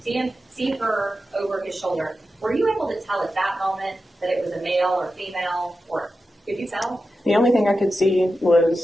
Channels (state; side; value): normal; both; correlation 0.91